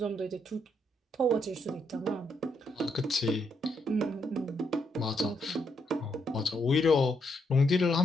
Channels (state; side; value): normal; both; correlation 0.77